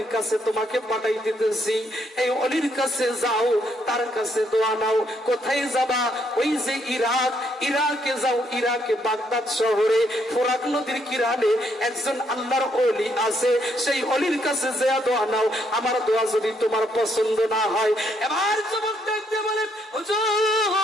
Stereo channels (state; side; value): normal; both; correlation 0.73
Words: কাছে তোমাকে পাঠাই দিতেছি, এই ওলির কাছে যাও, তার কাছে দোয়া নাও। কোথায় যাবা? ওই যে ইরাক, ইরাকে যাও, ইরাকে বাগদাদ শহরে ফোরাক নদীর কিনারে একজন আল্লাহর ওলি আছে, সেই ওলির কাছে যা দোয়া নাও। আমার দোয়া যদি তোমার পছন্দ না হয়, এবার যুবক দেখতে বলে